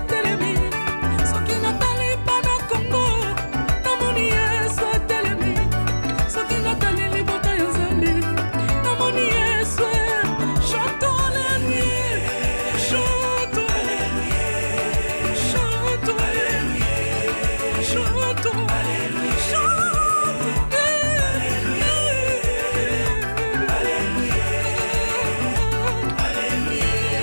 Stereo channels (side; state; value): both; inverted; correlation -1.00